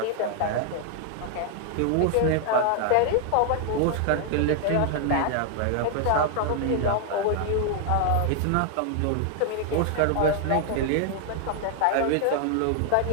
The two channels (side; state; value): both; different; correlation 0.00